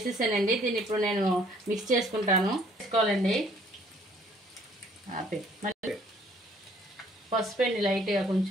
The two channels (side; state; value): both; normal; correlation 0.60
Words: దీన్ని ఇప్పుడు నేను మిక్స్ చేసుకుంటాను. వేసుకోవాలండి. మళ్ళీ పసుపు అండి లైట్గా,